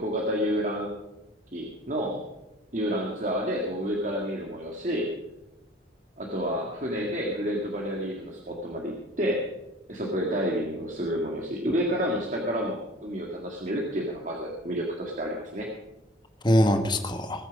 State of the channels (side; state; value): both; normal; correlation 0.47